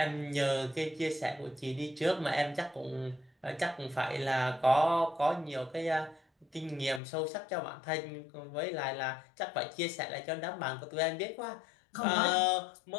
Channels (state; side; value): drops out; right; at 7.0 s